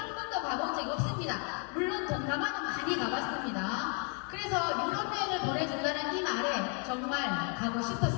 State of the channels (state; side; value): quieter; right; 35.7 dB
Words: 번도 가본 적이 없습니다. 물론 동남아는 많이 가봤습니다. 그래서 유럽 여행을 보내준다는 이 말에 정말 가고